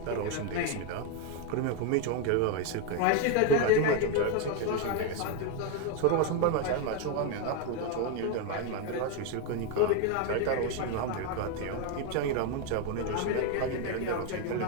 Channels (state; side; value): different; both; correlation 0.01